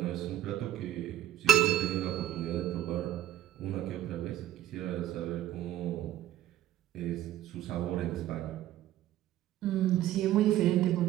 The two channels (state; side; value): quieter; left; 12.9 dB